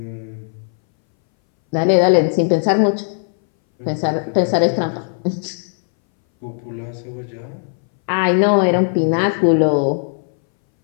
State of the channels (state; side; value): silent; right; 63 dB below the other